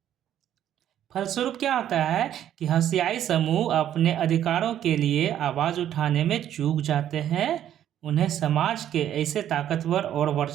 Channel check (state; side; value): quieter; left; 10.9 dB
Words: फलस्वरूप क्या होता है कि हंसियाई समूह अपने अधिकारों के लिए आवाज़ उठाने में चूक जाते हैं। उन्हें समाज के ऐसे ताकतवर और